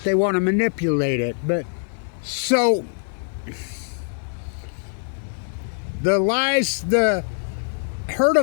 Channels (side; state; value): right; silent; digital silence